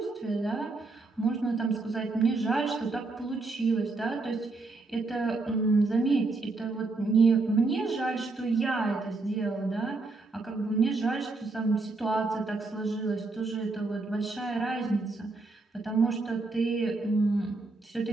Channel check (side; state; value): left; quieter; 3.5 dB